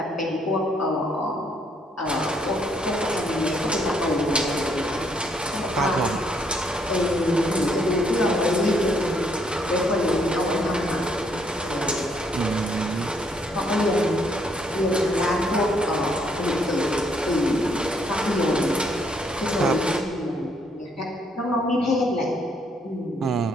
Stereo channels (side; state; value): both; normal; correlation 0.70